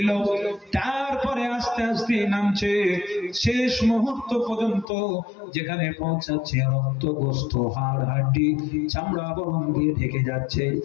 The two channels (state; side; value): drops out; right; at 4.9 s